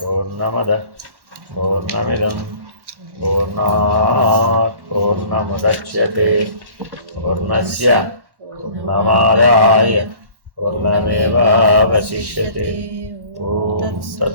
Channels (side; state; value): left; late; 1.1 ms